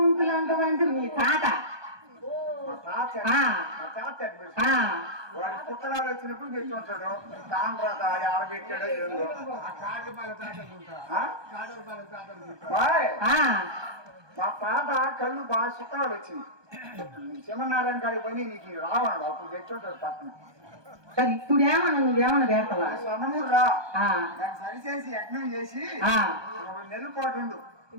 అంటావంటే మీ తాత. మా తాత ఆ, మా తాత ఆ. వాడి పుట్టడాలు వచ్చినప్పుడు పెట్టి ఉంటాడు. తాండ్రత ఆడ పెట్టాడో ఏదో. ఆ కాటపాల తాతలు ఆ? కాటపాల తాతలు బాయ్, ఆ, మా తాత కళ్ళు బాగా చిత్రాలు వచ్చింది. శివనారాయణ గారి పని నీకు రావన్నాడు. అప్పుడు పెట్టుంటాడు పక్కన. సరే ఇప్పుడు ఏమన్నా నువ్వేమన్నా పెడతావా? సన్నమూరు రా, ఆ, దాన్ని సరిచేసి యజ్ఞం చేసి ఆ. 2 నెలల పాటు ఉండు.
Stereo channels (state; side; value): late; left; 1.2 ms